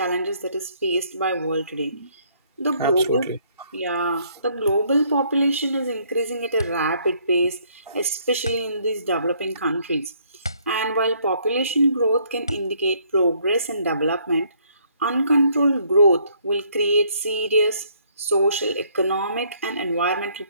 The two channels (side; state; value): both; inverted; correlation -0.66